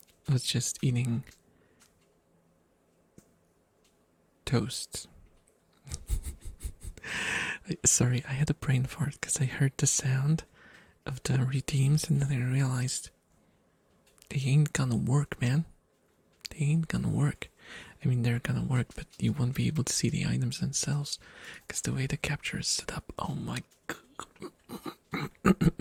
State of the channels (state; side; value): identical; both; correlation 1.00